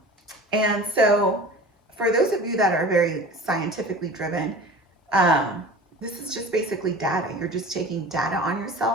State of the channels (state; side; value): normal; both; correlation 0.38